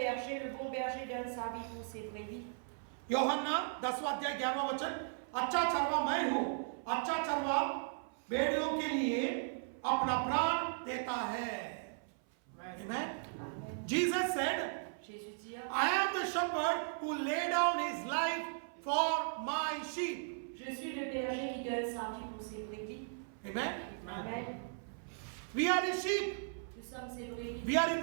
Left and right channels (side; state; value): left; silent; 53 dB below the other